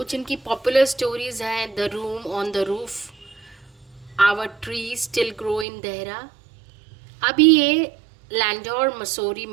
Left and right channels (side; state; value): left; drops out; at 5.7 s